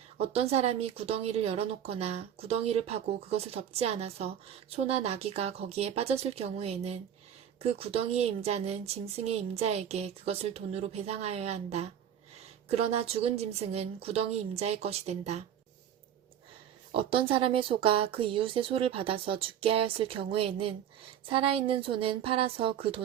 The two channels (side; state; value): left; quieter; 9.6 dB